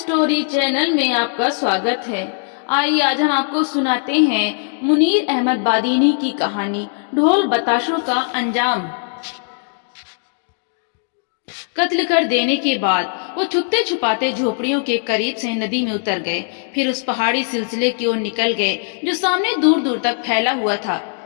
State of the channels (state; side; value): silent; right; 66 dB below the other